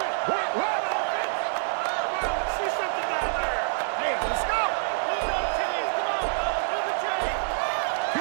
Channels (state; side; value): silent; left; digital silence